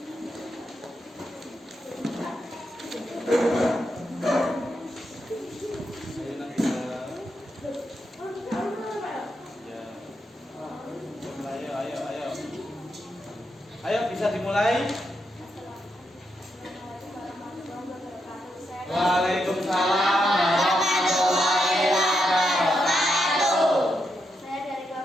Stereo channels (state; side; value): normal; both; correlation 0.82